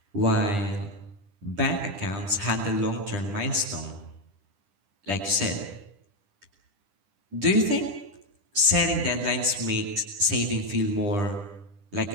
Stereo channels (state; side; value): late; left; 10 ms